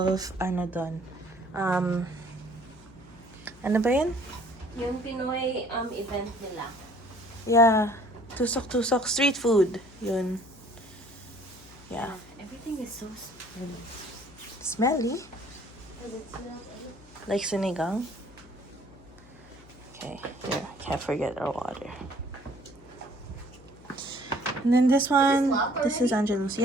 doon. Ano ba yun? Yung Pinoy event nila. Yeah, tusok street food. Yun. Yeah. Everything is so Smelly. Does it smell Like sinigang. Okay, here, can't forget our water. And then this one, this is Angelus.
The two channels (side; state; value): left; noise; hum, 22 dB below the sound